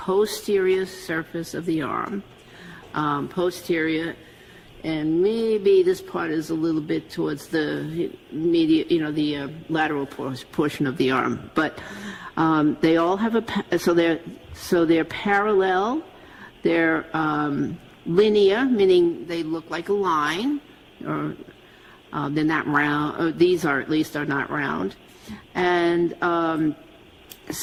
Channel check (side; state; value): both; identical; correlation 1.00